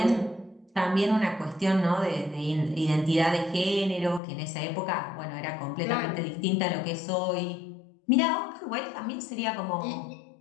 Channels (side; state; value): right; drops out; at 4.2 s